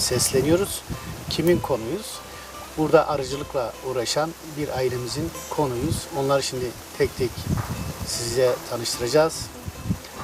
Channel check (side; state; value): both; identical; correlation 1.00